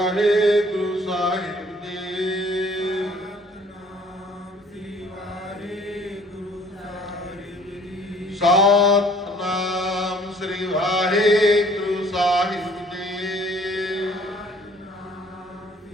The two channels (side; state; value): both; normal; correlation 0.56